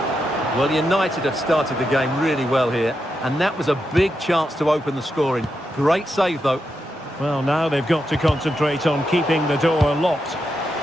Well, United have started the game really well here, and that was a big chance to open the scoring. Great save, though. Well, now they've got to concentrate on keeping the door locked.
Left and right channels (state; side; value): normal; both; correlation 0.85